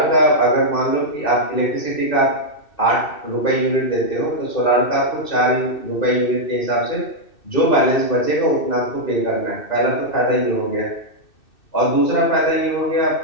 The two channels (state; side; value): late; right; 2.6 ms